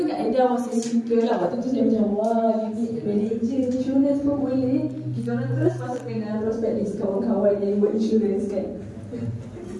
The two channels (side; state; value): both; identical; correlation 1.00